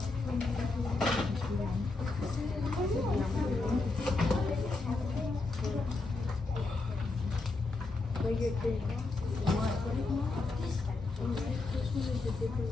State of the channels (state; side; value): quieter; right; 3.5 dB